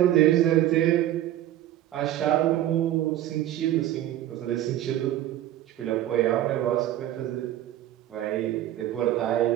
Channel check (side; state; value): left; quieter; 13.0 dB